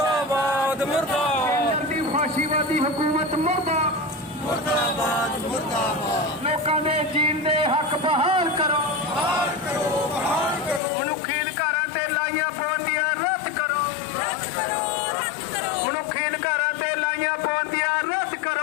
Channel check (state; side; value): drops out; right; at 10.8 s